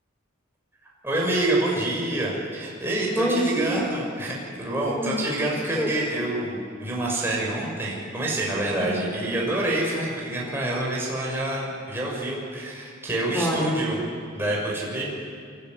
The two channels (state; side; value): normal; both; correlation 0.40